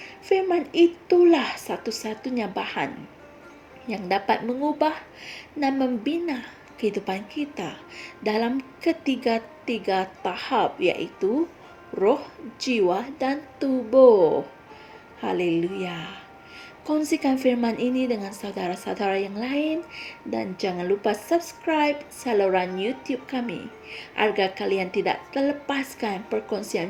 Firman itulah satu-satunya bahan yang dapat mengubah dan membina kehidupan kita dalam ketiga-tiga tahap, iaitu roh, jiwa, dan tubuh. Haleluya. Kongsikan firman ini dengan saudara-saudara yang lain dan jangan lupa subscribe saluran YouTube kami agar kalian tidak terlepaskan perkongsian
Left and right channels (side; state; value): both; identical; correlation 1.00